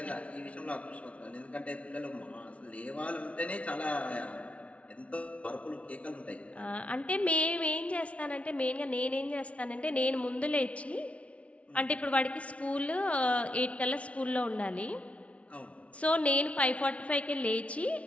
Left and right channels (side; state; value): right; late; 0.064 ms